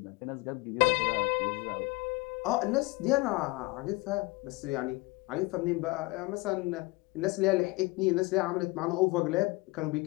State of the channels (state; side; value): quieter; right; 23.9 dB